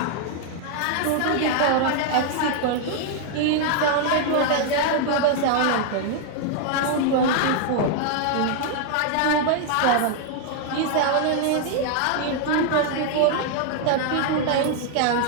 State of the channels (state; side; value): different; both; correlation 0.00